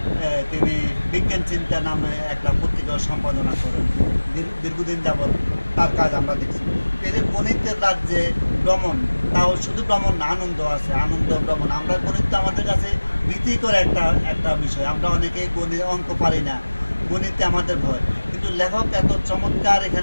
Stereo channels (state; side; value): inverted; both; correlation -1.00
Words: তিনি বিজ্ঞান চিন্তা নামে একটা পত্রিকা সম্পাদনা করেন। দীর্ঘদিন যাবৎ তার কাজ আমরা দেখছি। এই যে গণিতের রাজ্যে ভ্রমণ, তাও শুধু ভ্রমণ না, আনন্দ আছে, আনন্দ ভ্রমণ। আমরা গণিত তো আমাদের কাছে ভীতিকর একটা বিষয়। আমরা অনেকেই গণিত অঙ্ক পারি না, গণিতে আমাদের ভয়। কিন্তু লেখক এত চমৎকার